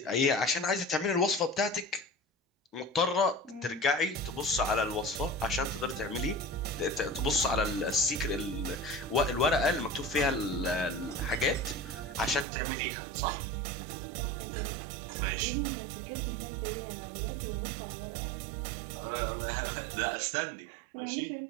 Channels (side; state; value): left; drops out; at 12.5 s